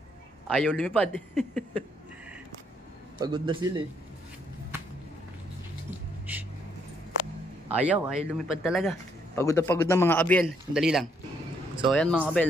Ayaw lumipad. Pagod na sila, eh. Ayaw lumipad talaga. Pagod na mga kabel. Sandali lang. So ayan, mga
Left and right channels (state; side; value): normal; both; correlation 0.71